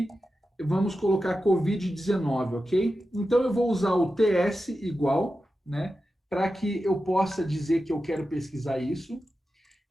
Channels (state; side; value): normal; both; correlation 0.91